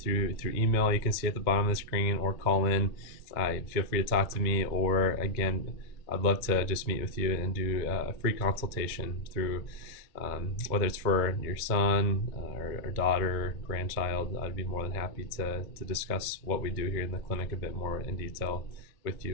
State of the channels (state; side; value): late; right; 2.1 ms